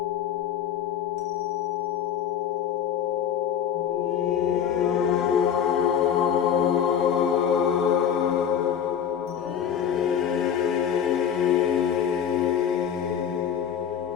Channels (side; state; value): right; quieter; 8.6 dB